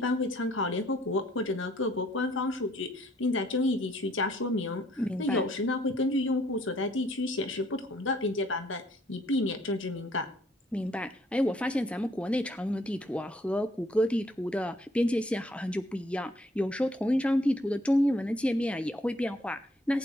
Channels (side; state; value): both; normal; correlation 0.64